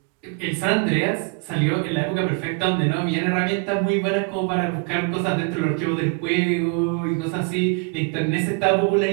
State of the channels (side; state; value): left; quieter; 32.4 dB